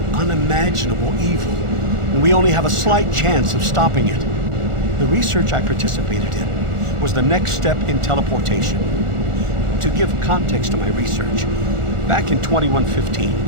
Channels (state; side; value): late; left; 1.4 ms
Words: unimaginable evil, and we only have a slight chance of stopping it. The research I participated in was the next step in teleportation. To give context to my research, back in 2115,